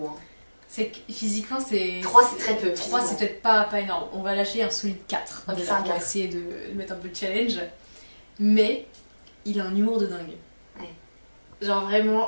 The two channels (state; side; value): inverted; both; correlation -1.00